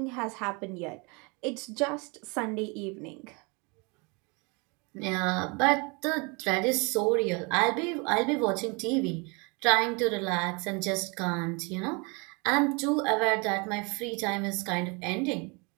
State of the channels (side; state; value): left; quieter; 30.3 dB